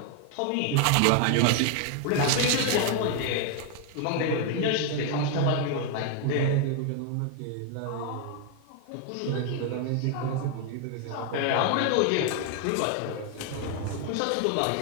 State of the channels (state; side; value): different; both; correlation 0.01